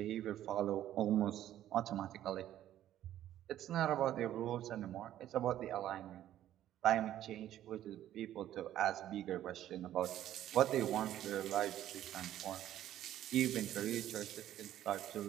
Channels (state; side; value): quieter; left; 12.3 dB